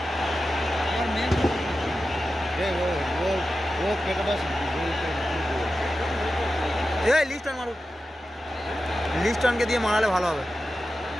এই লিস্টন মারুক, লিস্টনকে দিয়ে মারালে ভালো হবে।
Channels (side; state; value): both; normal; correlation 0.92